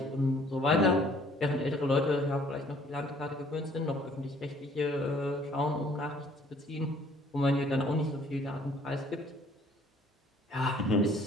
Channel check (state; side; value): normal; both; correlation 0.58